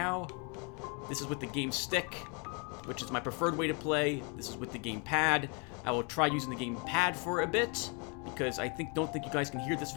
This is with the game stick, which is my preferred way to play. This is with the game pad. I will try using the game pad for a bit, because I don't think you guys can hear this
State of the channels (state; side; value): quieter; right; 34.2 dB